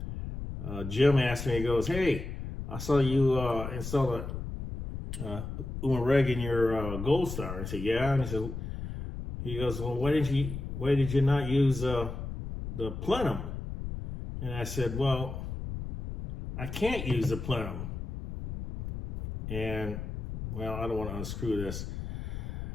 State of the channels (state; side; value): noise; left; rumble, 7 dB below the sound